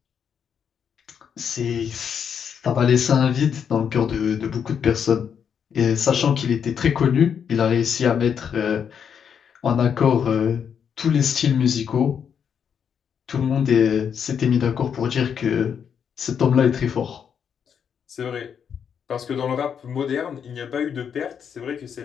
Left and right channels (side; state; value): right; quieter; 7.6 dB